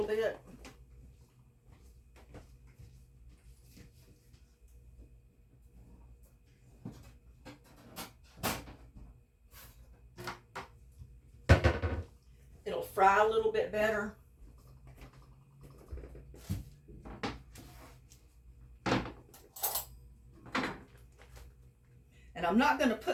bit. It'll fry a little bit better. And I'm not going to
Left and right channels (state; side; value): identical; both; correlation 1.00